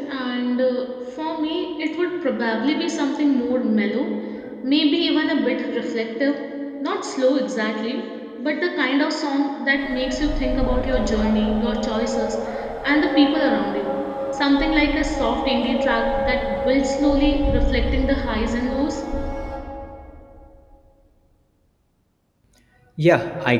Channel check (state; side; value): identical; both; correlation 1.00